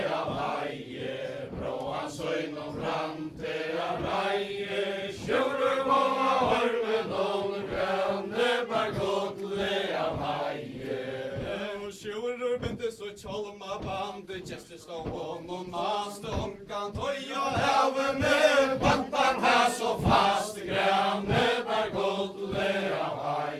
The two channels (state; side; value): identical; both; correlation 1.00